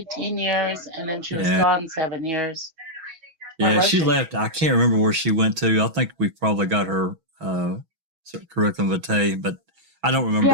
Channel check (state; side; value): late; left; 6.1 ms